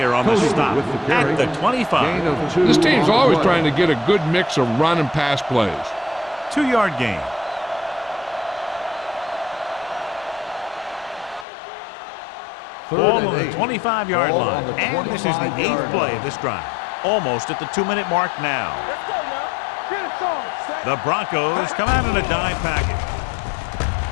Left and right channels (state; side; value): drops out; right; at 11.5 s